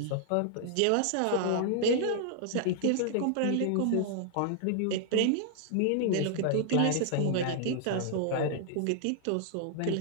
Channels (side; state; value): both; different; correlation 0.00